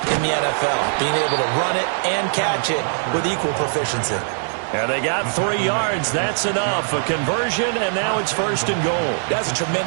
in the NFL, being able to run it and catch it with equal proficiency. And they got 3 yards. That's enough. A conversion, and now it's 1st and goal. That's a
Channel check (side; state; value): left; silent; digital silence